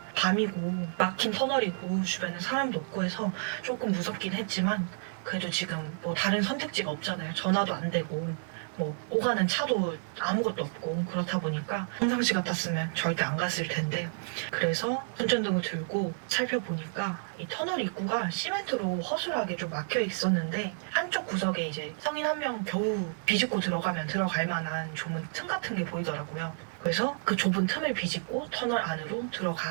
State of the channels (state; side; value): silent; left; 57 dB below the other